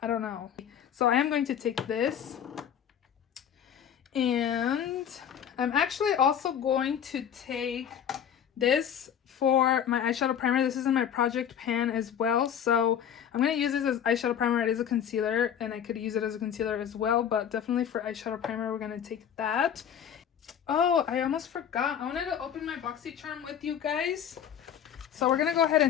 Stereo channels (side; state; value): right; quieter; 8.9 dB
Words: I don't know. So I am going to take this, and I'm actually also going to take this for my eyeshadow primer. This is in my project pan as well, so I'm going to use this as eyeshadow primer. It is a concealer, and I could use it as a concealer as well, but definitely for eyeshadow primer, we're going to take that. Oh, I almost forgot. I wanted to open my Boxycharm with you guys, so we're going to go ahead